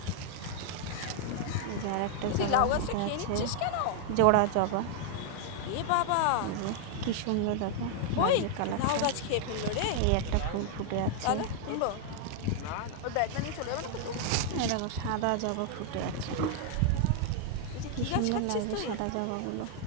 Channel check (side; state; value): both; different; correlation 0.00